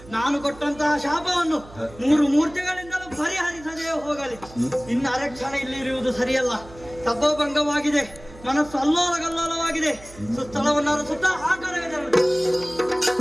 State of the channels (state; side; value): noise; right; hum, 20 dB below the sound